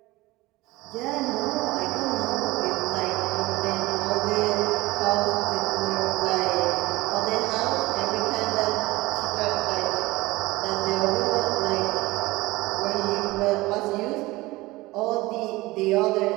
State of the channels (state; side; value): quieter; left; 20.4 dB